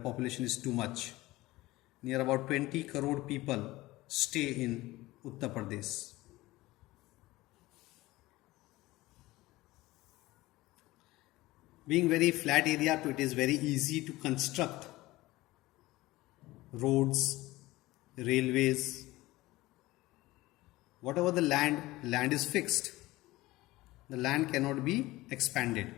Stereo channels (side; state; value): right; quieter; 18.8 dB